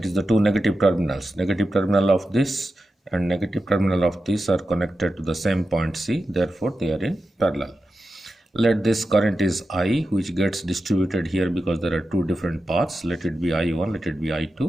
is the two negative terminals, negative terminal of this and negative terminal of this are connected to the same point C, therefore they are in parallel. Let this current is I, which gets distributed here because there are two different paths. Let it be I1, let it be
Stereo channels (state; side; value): normal; both; correlation 0.91